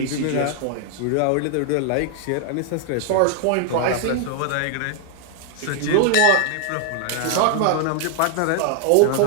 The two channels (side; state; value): both; different; correlation 0.00